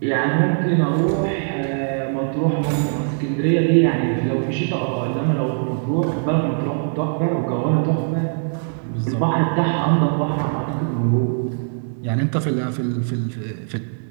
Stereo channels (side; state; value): left; silent; digital silence